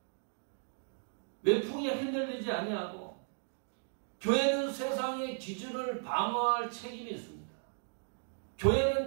외풍에 흔들리지 아니하고 교회는 세상의 기준을 방어할 책임이 있습니다. 교회는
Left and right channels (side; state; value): left; silent; digital silence